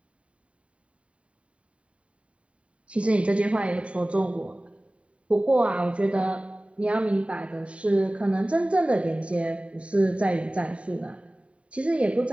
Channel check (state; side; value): late; left; 0.063 ms